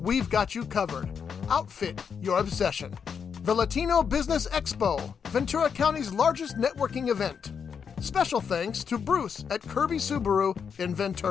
got you covered. Outfit your obsession. The Latino Business Expo, Ventura County's largest networking event. Special thanks to Bruce at Kirby Subaru in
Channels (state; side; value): quieter; right; 6.7 dB